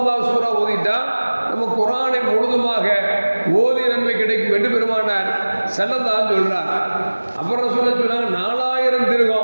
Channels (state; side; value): inverted; both; correlation -1.00